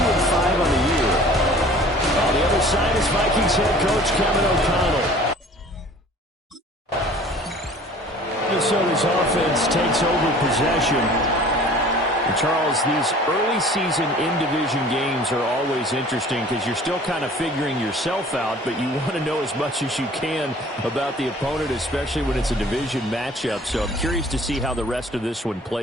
on the year. On the other side is Vikings head coach Kevin O'Connell. Minnesota's offense takes over possession. And Charles, these early season in-division games are always interesting because you're still kind of figuring yourself out, but you want to know as much as you can about the opponent, especially when it's a division matchup. So I'm curious to see how the rest of this one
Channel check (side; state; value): both; normal; correlation 0.48